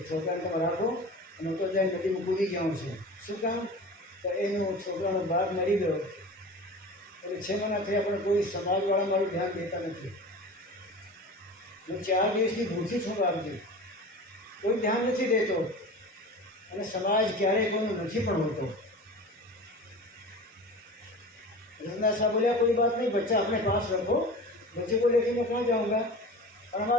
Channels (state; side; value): normal; both; correlation 0.35